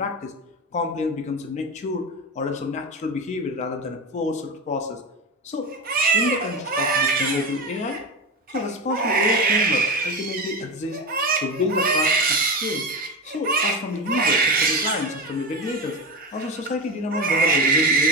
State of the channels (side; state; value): both; normal; correlation 0.20